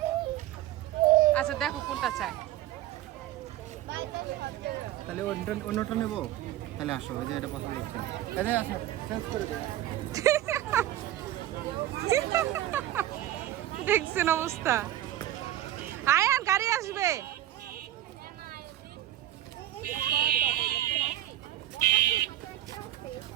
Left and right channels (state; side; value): quieter; left; 13.4 dB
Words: আচ্ছা দেখো কোনটা চায়। তাহলে অন্যটা নেবো, তাহলে আসো, ওই যে এটা পছন্দ হচ্ছে, চেঞ্জ করে দেবো। দেখছেন অবস্থা। আয়ান গাড়ি আসবে।